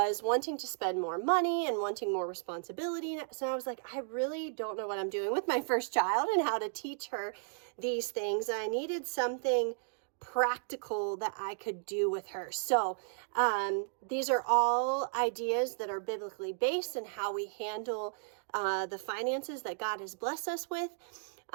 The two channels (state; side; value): silent; left; digital silence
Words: wanting to spend more money and wanting more responsibility. So I was like, I really don't know what I'm doing with my first child and how to teach her these things. I needed something practical that I could do with her. So these are all ideas that are biblically based and how we handle the finances that God has blessed us with.